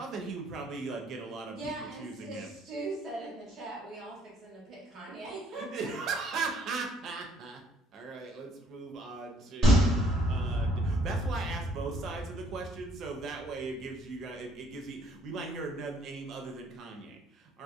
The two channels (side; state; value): both; normal; correlation 0.64